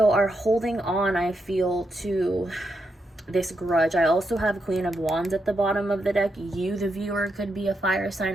are holding on, I feel, to this grudge. I also have Queen of Wands at the bottom of the deck. You, the viewer, could be a fire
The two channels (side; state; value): both; normal; correlation 0.83